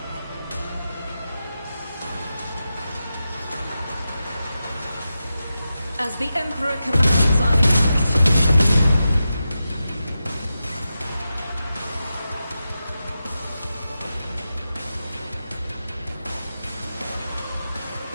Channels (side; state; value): both; inverted; correlation -0.91